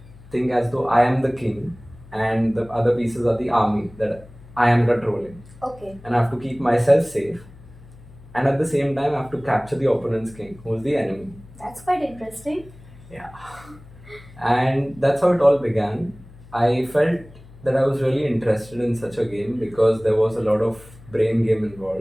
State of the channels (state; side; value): noise; left; hum, 21 dB below the sound